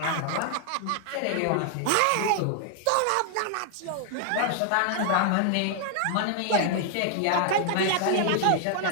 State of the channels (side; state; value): both; different; correlation 0.00